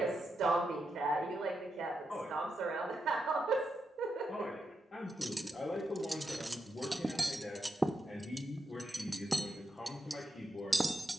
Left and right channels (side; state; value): both; normal; correlation 0.85